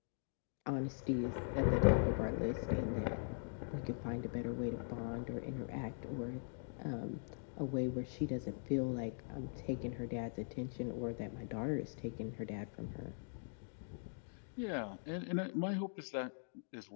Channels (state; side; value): silent; right; digital silence